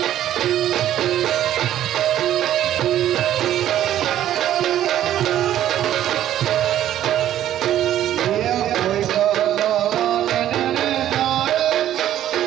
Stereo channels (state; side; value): quieter; left; 11.9 dB